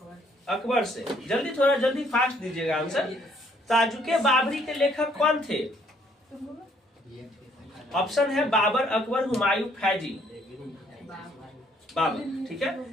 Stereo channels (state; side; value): normal; both; correlation 0.65